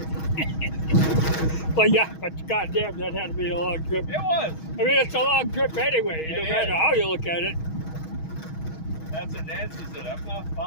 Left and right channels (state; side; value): late; right; 6.3 ms